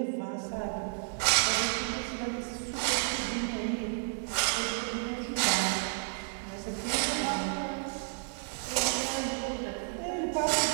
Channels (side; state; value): left; silent; 57 dB below the other